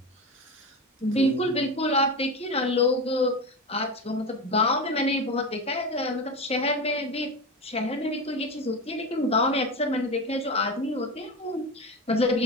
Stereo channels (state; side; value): normal; both; correlation 0.22